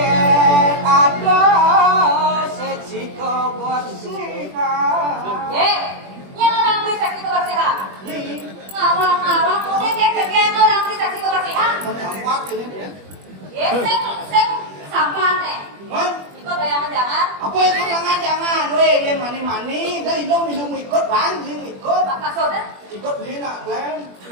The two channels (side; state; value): left; late; 21 ms